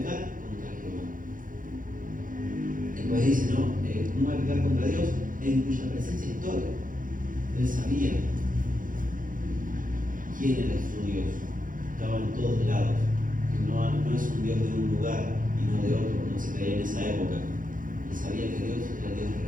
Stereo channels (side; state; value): left; late; 0.39 ms